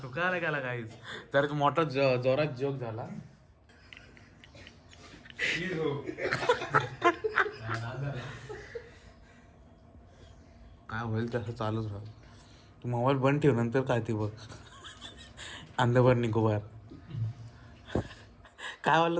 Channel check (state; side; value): identical; both; correlation 1.00